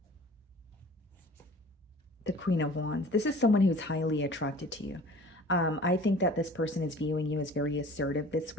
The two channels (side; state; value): both; normal; correlation 0.46